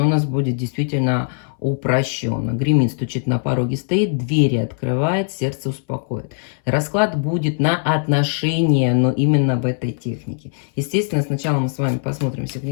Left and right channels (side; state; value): right; silent; 62 dB below the other